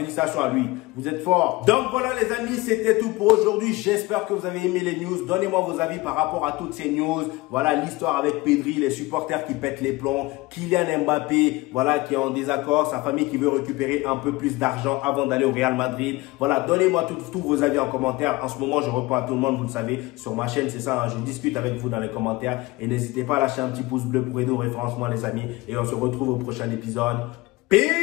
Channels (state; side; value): quieter; right; 21.2 dB